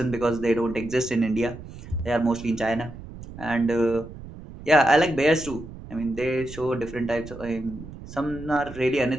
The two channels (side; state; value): right; noise; rumble, 14 dB below the sound